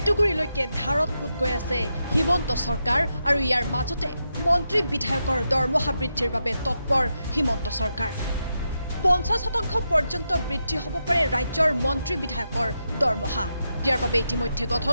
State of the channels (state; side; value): inverted; both; correlation -0.85